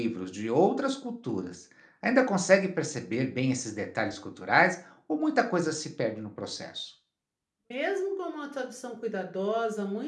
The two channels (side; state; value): both; identical; correlation 1.00